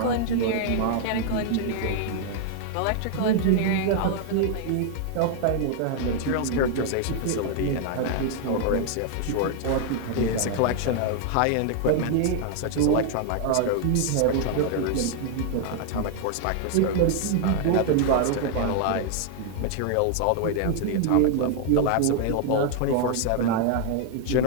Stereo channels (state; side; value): different; both; correlation 0.00